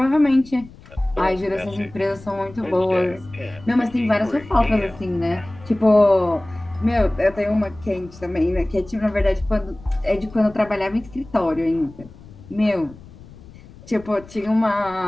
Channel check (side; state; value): left; noise; rumble, 20 dB below the sound